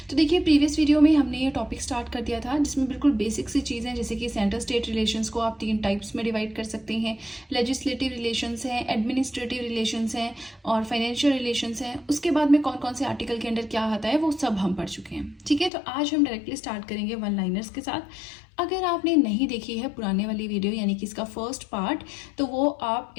तो देखिए, प्रीवियस वीडियो में हमने ये टॉपिक स्टार्ट कर दिया था जिसमें बिल्कुल बेसिक सी चीज़ें, जैसे कि सेंटर स्टेट रिलेशंस को आप 3 टाइप्स में डिवाइड कर सकते हैं। लेजिस्लेटिव रिलेशंस हैं, एडमिनिस्ट्रेटिव रिलेशंस हैं और फाइनेंशियल रिलेशंस हैं। उसके बाद में कौन कौन से आर्टिकल के अंडर क्या आता है वो सब हम पढ़ चुके हैं। ठीक है, तो आज हम डायरेक्टली स्टार्ट करेंगे वन लाइनर्स के साथ। अगर आपने नहीं देखी है पुराने वाली वीडियो यानी कि इसका फर्स्ट पार्ट, तो वो आप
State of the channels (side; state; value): right; drops out; at 15.7 s